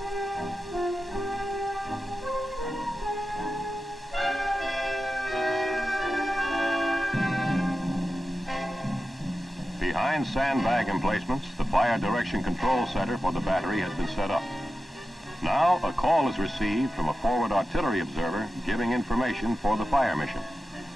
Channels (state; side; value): normal; both; correlation 0.92